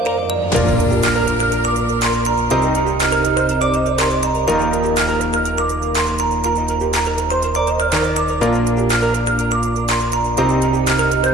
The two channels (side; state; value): both; normal; correlation 0.57